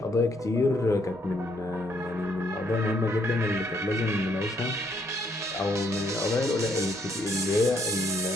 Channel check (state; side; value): normal; both; correlation 0.70